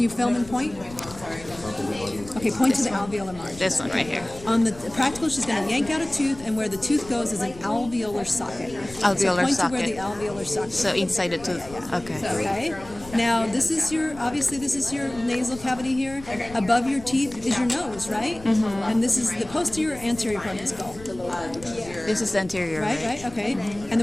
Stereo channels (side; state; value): left; noise; rumble, 17 dB below the sound